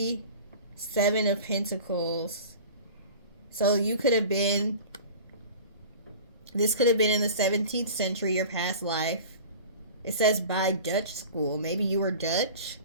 7 of Pentacles. So you could have been, this could have been in the 17th century, your past life. It says by Dutch school. Maybe you were Dutch.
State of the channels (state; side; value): inverted; both; correlation -0.39